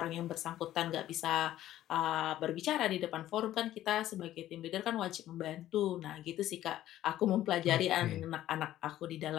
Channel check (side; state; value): right; quieter; 13.4 dB